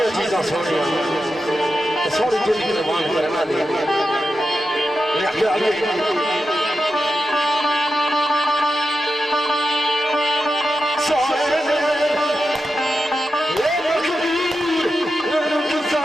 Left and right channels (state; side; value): normal; both; correlation 0.89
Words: चीज़ां सोनिया, तो सोनी जिंदगी कुर्बान करना दे।